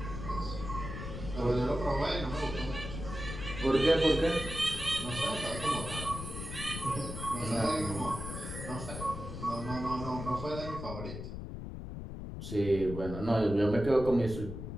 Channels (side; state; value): left; noise; rumble, 8 dB below the sound